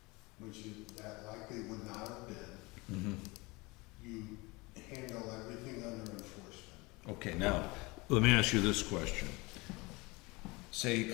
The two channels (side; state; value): right; quieter; 24.6 dB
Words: which that likely would not have been, Mm-hmm. you handle everything under enforcement. Okay, now, let me ask you this question. Say he